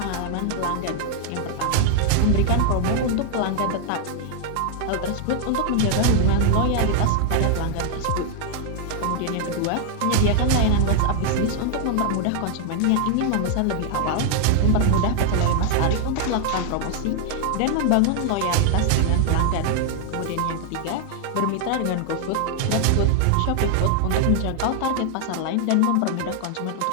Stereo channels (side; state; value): both; different; correlation 0.00